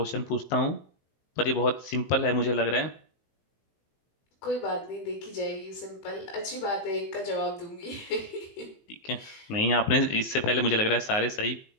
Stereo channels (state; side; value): late; right; 19 ms